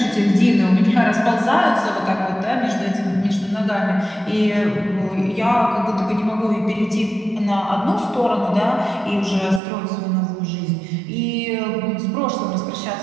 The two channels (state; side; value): drops out; left; at 9.6 s